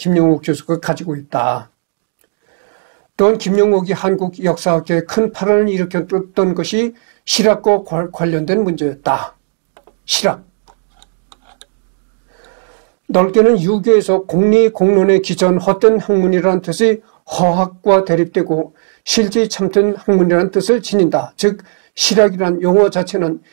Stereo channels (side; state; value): left; silent; digital silence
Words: 교수가 가지고 있다. 또한 김영옥이 한국 역사학계에 큰 파란을 일으켰던 것이 실학과 관련된 문제였다. 실학. 넓게는 유교에서 공리 공론에 기초한 헛된 학문이라는 뜻이 허학과 대립되고 실제 참된 학문이라는 뜻을 지닌다. 즉 실학이라는 용어 자체는